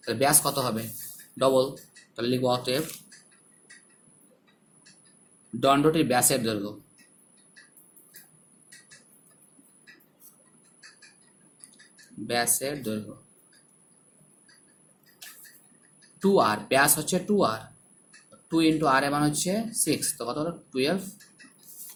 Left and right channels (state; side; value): identical; both; correlation 1.00